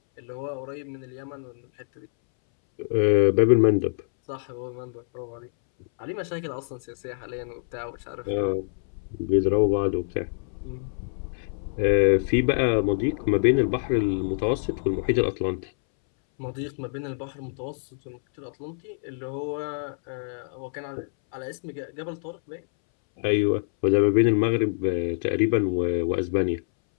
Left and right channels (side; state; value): right; silent; 61 dB below the other